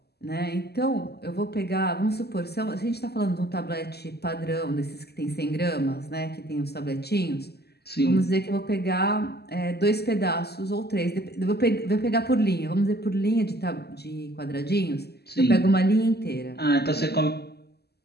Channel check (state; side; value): late; right; 0.47 ms